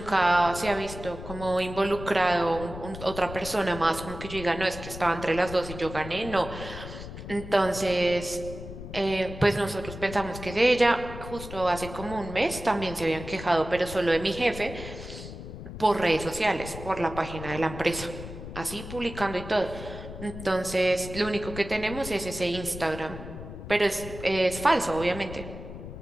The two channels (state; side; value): noise; left; rumble, 11 dB below the sound